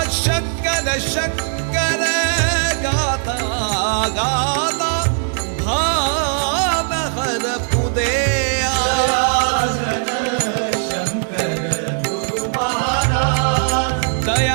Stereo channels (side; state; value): left; silent; digital silence